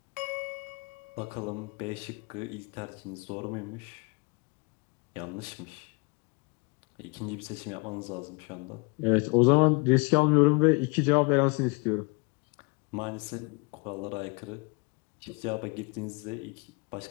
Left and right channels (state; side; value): quieter; right; 31.6 dB